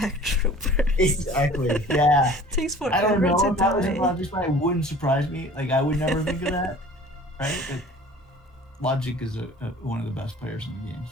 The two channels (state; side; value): normal; both; correlation 0.46